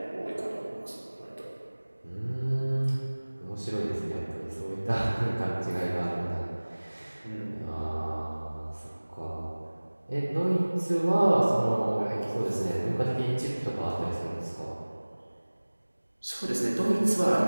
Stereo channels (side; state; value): both; inverted; correlation -1.00